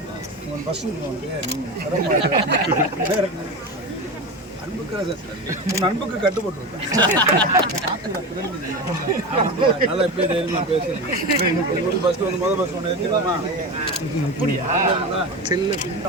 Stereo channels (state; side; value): normal; both; correlation 0.23